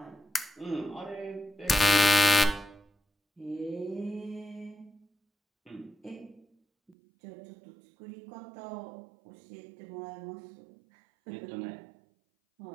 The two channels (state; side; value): drops out; left; at 7.0 s